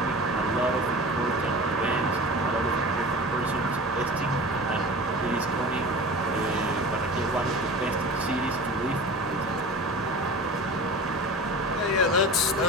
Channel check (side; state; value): both; normal; correlation 0.34